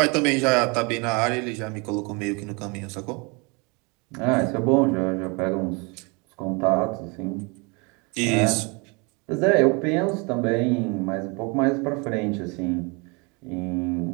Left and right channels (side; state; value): left; quieter; 30.2 dB